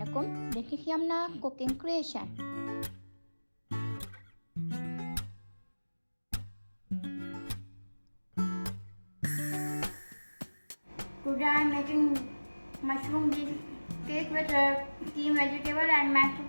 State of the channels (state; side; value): inverted; both; correlation -1.00